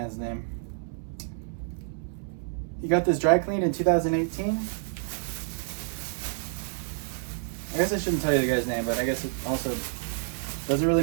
name. He got this dry cleaned in 2018. I guess I shouldn't tell you the guy's name, but I guess it also doesn't really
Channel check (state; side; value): silent; left; 59 dB below the other